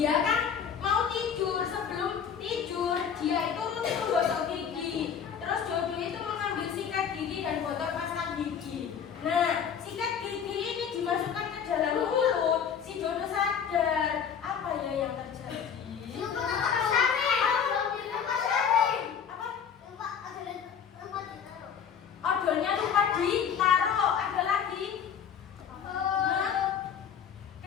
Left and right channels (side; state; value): right; quieter; 7.6 dB